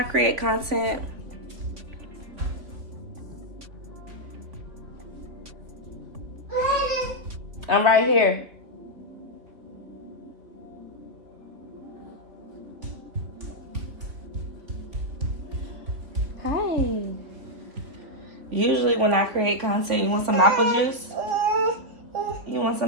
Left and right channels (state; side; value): late; left; 3.8 ms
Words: create content, I'm right here. Hi. Usually when I create content, you want some apple juice? You want